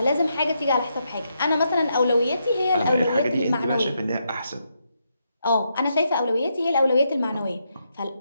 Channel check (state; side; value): inverted; both; correlation -0.81